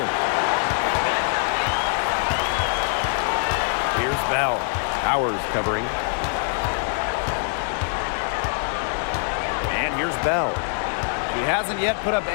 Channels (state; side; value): silent; right; digital silence